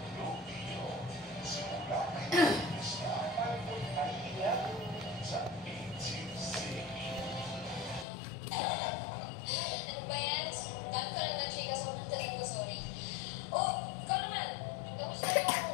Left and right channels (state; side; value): drops out; right; at 8.1 s